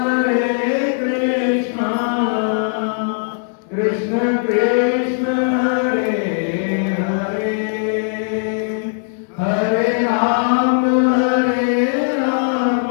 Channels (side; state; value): right; silent; digital silence